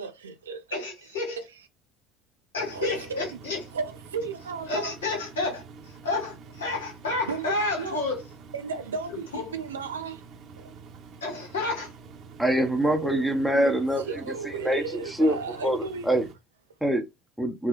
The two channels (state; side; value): normal; both; correlation 0.45